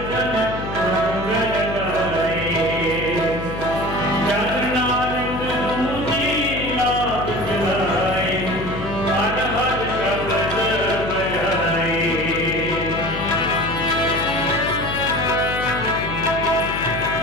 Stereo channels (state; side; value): noise; left; hum, 7 dB below the sound